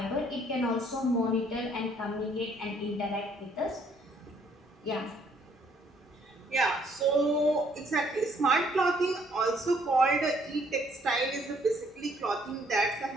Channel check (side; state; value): both; normal; correlation 0.65